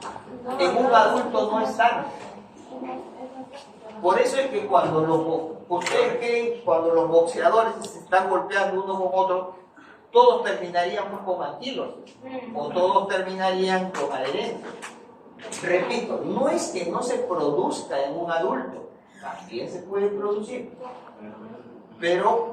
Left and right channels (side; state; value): both; identical; correlation 1.00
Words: En un adulto no es tanto. Por eso es que ustedes creen cuando los boxeadores se están golpeando uno con otro, todos terminaríamos con anquilosis o todos terminarían con adherencia. Repito, no es que no se produzca en un adulto, también se puede producir,